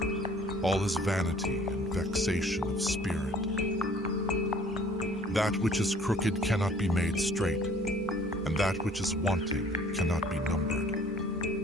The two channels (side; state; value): both; normal; correlation 0.54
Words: all is vanity and vexation of spirit. That which is crooked cannot be made straight, and that which is wanting cannot be numbered.